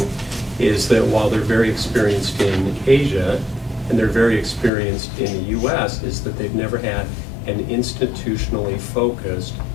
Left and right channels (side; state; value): right; drops out; at 4.7 s